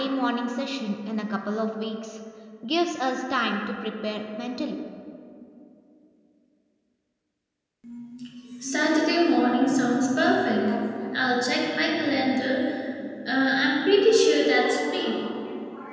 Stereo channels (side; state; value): both; identical; correlation 1.00